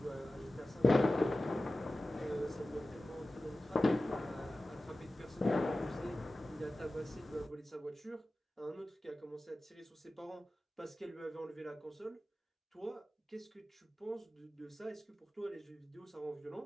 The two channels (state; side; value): normal; both; correlation 0.95